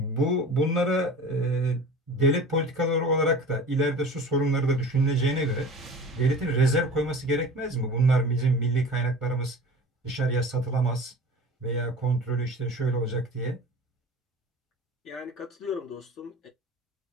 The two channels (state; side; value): normal; both; correlation 0.38